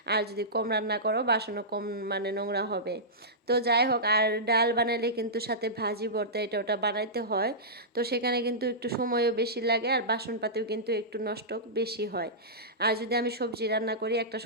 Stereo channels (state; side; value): normal; both; correlation -0.15